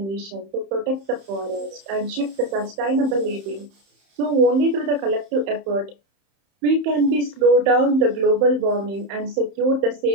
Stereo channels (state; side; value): late; left; 31 ms